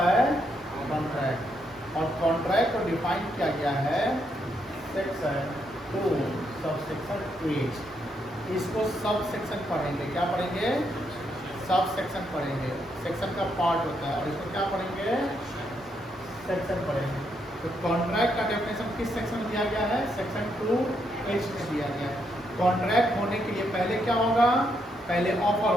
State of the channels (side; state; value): both; normal; correlation 0.77